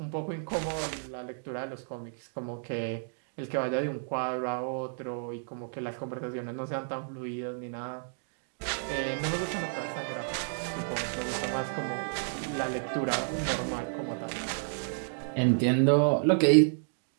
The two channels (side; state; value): left; silent; digital silence